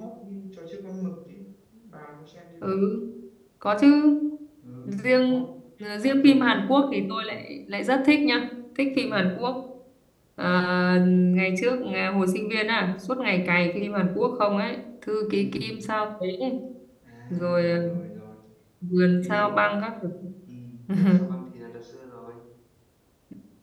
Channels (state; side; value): identical; both; correlation 1.00